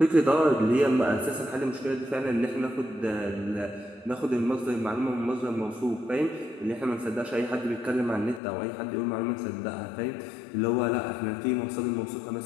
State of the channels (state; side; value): drops out; right; at 8.4 s